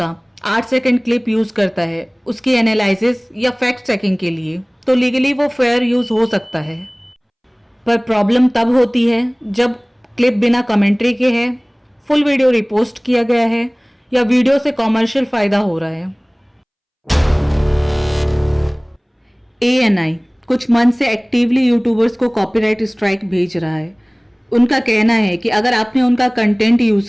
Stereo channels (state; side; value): identical; both; correlation 1.00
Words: 8 सेकंड क्लिप यूज़ करता है उसकी एनालिसिस या फैक्ट चेकिंग के लिए, तो लीगली वो फेयर यूज़ हो सकता है। पर प्रॉब्लम तब होती है जब क्लिप बिना कमेंट्री के है, फुल वीडियो रिपोस्ट किया गया है या वीडियो से कॉमर्शियल फ़ायदा हो रहा है। ANI कुछ मंथ से एक्टिवली यूट्यूबर्स को कॉपीराइट स्ट्राइक भेज रहा है। उनका कहना है कि अगर आपने उनका कंटेंट